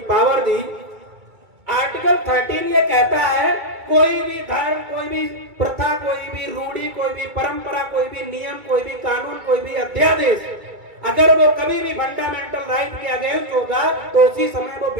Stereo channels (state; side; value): late; left; 2.2 ms